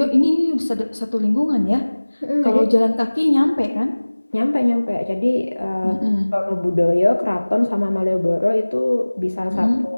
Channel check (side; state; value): both; inverted; correlation -1.00